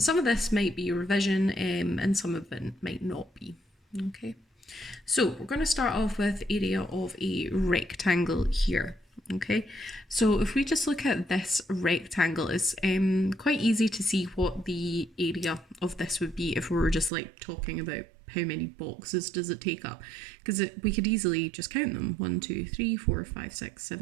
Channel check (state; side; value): drops out; left; at 17.1 s